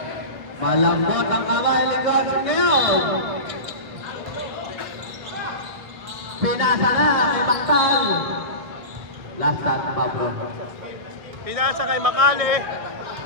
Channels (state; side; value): late; left; 1.7 ms